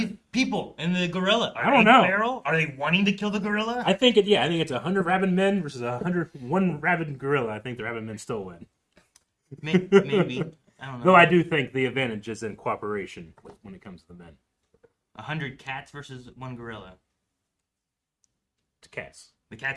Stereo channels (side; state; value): both; identical; correlation 1.00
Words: people and the gorilla? Are I don't they know. feral? Are they wanting to kill the gorilla? I think it's 100 rabid men versus 101 rabid gorilla. I think the rabid men still win. Maybe. I don't know. Though I do think the advantage is in cooperation when it comes to the men. 100 cats versus 1 gorilla. It's cats. The